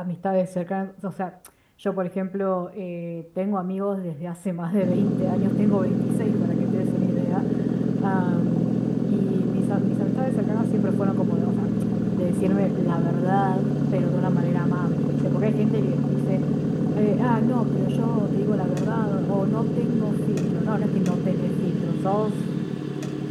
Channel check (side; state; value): both; identical; correlation 1.00